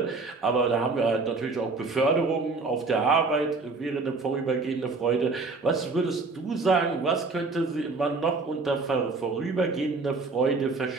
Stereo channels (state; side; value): quieter; left; 3.8 dB